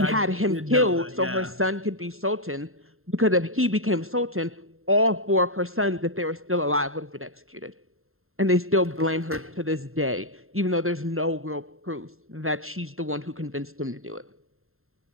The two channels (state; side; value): late; left; 0.61 ms